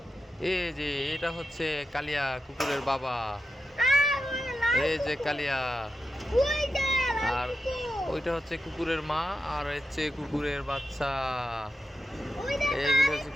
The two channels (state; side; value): normal; both; correlation 0.89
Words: এই যে এটা হচ্ছে কালিয়া কুকুরের বাবা। মানে লাল এই যে কুকুর। কালিয়া। ওই যে লাল আর কুকুর। ওইটা হচ্ছে কুকুরের মা, আর হচ্ছে কুকুরের বাচ্চা। ওই দেখো এইগুলো হচ্ছে